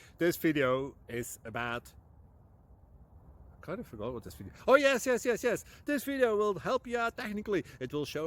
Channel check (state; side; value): identical; both; correlation 1.00